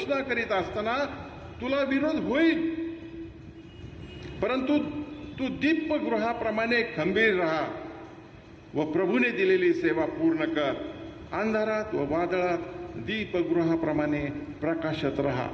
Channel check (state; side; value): identical; both; correlation 1.00